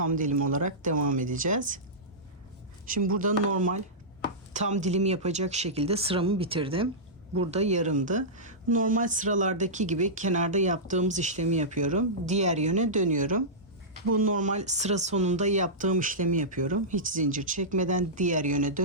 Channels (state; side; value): normal; both; correlation -0.15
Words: dilim olarak devam edeceğiz. Şimdi burada normal tam dilim yapacak şekilde sıramı bitirdim. Burada yarımdı. Normal sıralardaki gibi kenarda yaptığımız işlemi yapıyorum. Diğer yöne dönüyorum. Bu normal sıra sonunda yaptığım işlemi yapıyorum. Hiç zincir çekmeden diğer yöne